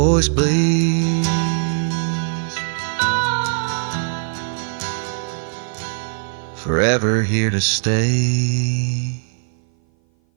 bleeds, forever here to stay.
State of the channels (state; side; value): silent; left; 57 dB below the other